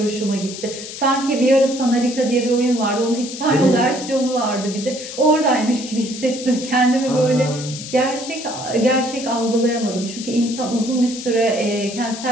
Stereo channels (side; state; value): left; noise; hiss, 10 dB below the sound